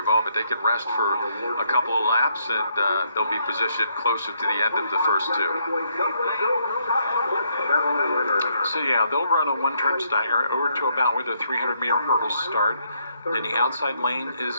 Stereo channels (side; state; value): both; inverted; correlation -0.73